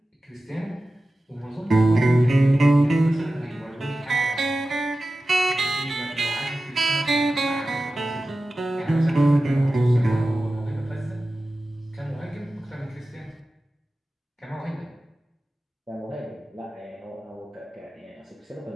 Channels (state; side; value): normal; both; correlation 0.94